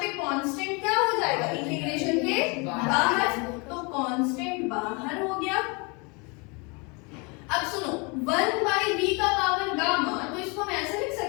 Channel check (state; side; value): quieter; right; 30.3 dB